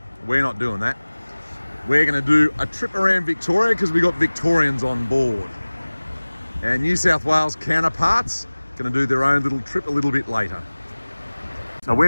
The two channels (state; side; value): inverted; both; correlation -1.00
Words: we're not doing that. We're going to do a trip around Victoria because we got Victorians on board. Our New South Wales counterparts going to do their own little trip a little bit later. So